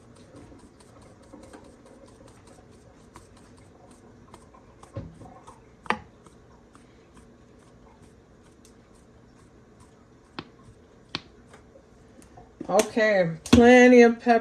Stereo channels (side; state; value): both; identical; correlation 1.00